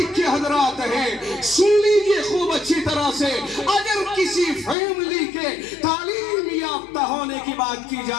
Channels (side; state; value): right; drops out; at 4.8 s